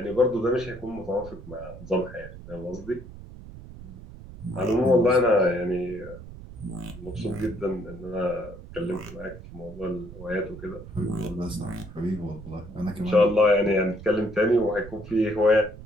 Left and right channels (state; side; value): noise; right; rumble, 15 dB below the sound